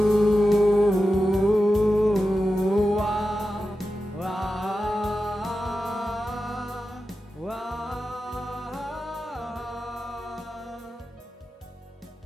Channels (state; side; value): normal; both; correlation 0.92